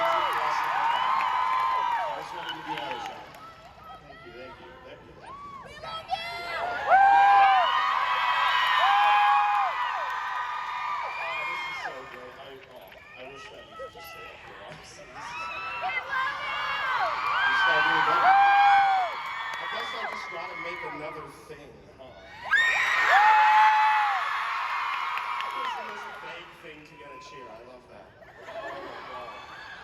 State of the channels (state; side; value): identical; both; correlation 1.00